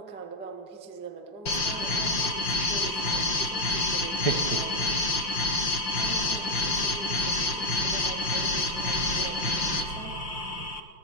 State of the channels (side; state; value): right; late; 5.7 ms